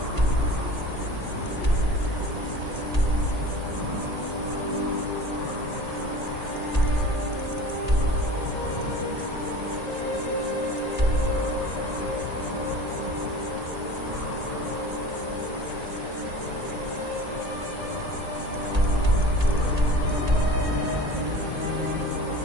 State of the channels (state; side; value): late; left; 1.8 ms